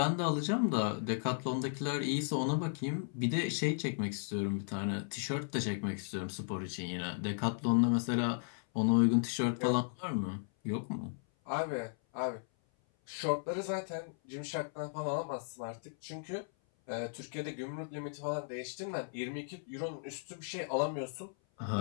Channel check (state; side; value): silent; right; 54 dB below the other